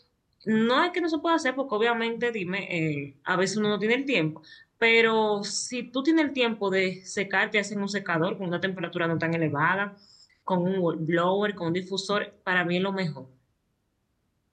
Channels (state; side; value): identical; both; correlation 1.00